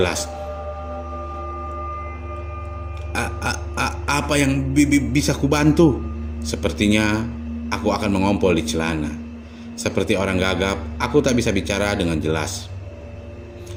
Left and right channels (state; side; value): identical; both; correlation 1.00